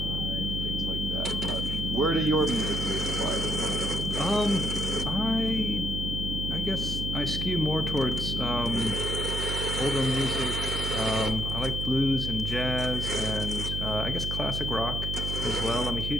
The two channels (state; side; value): noise; right; hum, 3 dB below the sound